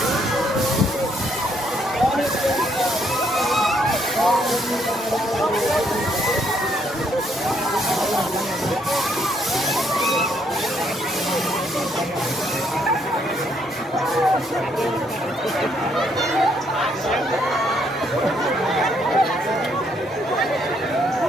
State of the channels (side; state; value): both; normal; correlation 0.71